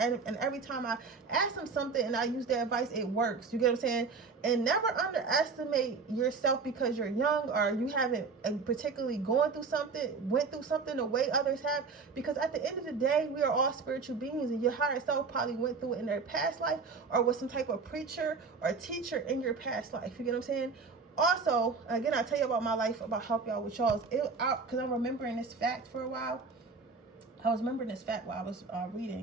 every time I ask them something and I use their advice, it works. You get what I'm saying? And never underestimate yourself because you're young or you haven't particularly went through something the way others have. Because at the end of the day, we are all spiritual beings, and your higher self probably went through it in their past life or was some type of preacher or teacher in your past life. You get what I'm saying? Also, again, I'll tell you about my life, about help y'all with y'all's, because I'm remembering this fact for a while. I was remembering this fact while I was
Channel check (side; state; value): left; quieter; 4.6 dB